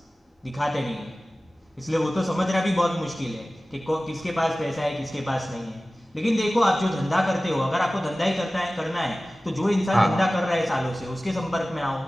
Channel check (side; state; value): both; normal; correlation 0.97